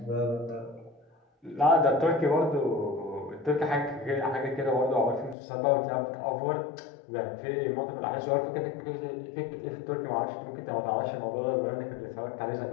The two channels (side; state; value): right; drops out; at 5.4 s